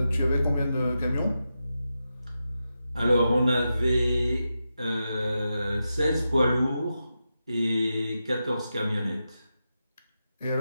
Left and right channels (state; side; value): inverted; both; correlation -0.89